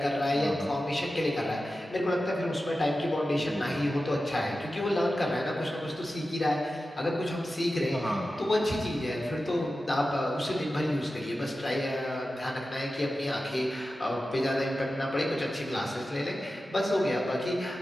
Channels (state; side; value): normal; both; correlation 0.93